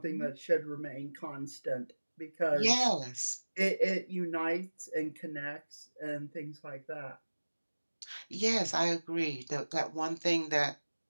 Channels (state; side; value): inverted; both; correlation -1.00